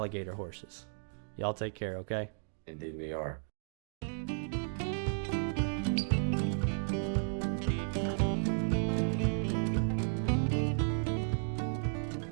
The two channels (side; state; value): left; silent; digital silence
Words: horses. Y'all take care, okay? Indeed we are.